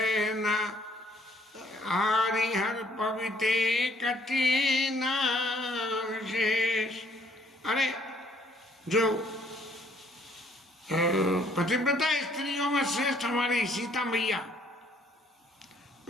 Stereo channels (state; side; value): normal; both; correlation 0.63